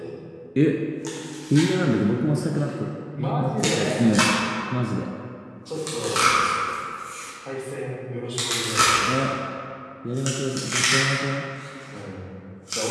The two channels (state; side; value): identical; both; correlation 1.00